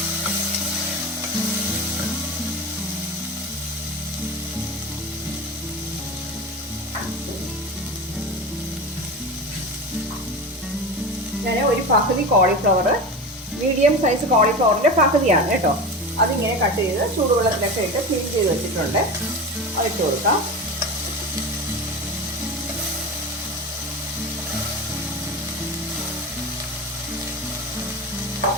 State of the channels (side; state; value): both; normal; correlation 0.27